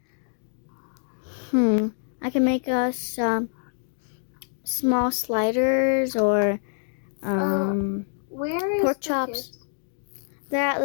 I can make us some small sliders or where is pork the chops. kids?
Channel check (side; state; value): right; silent; digital silence